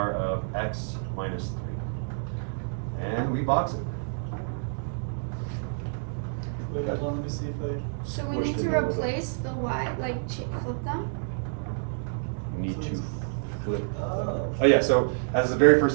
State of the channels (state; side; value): silent; left; digital silence